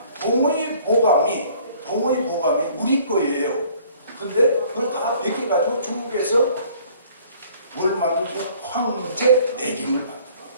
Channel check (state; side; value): inverted; both; correlation -0.56